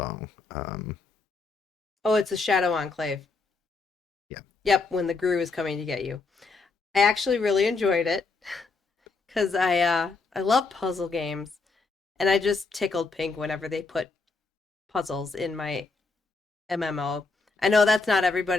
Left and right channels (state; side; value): quieter; right; 4.0 dB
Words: Oh, it's a Shadow Enclave. Yeah. Yep, when the Gru is coming to get you. I actually really enjoyed it because I love puzzle games, and I just tickled pink whenever they put puzzles in my MMO. I know that's not